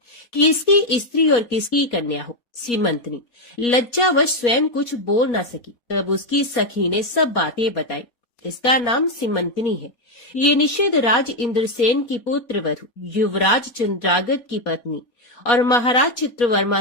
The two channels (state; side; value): late; right; 4.2 ms